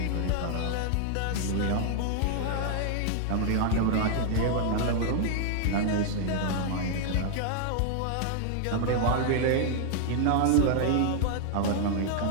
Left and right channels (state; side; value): different; both; correlation 0.00